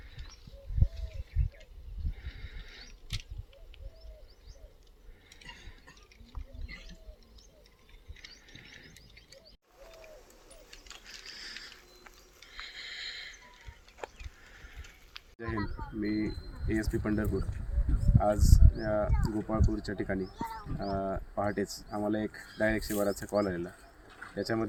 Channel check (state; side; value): identical; both; correlation 1.00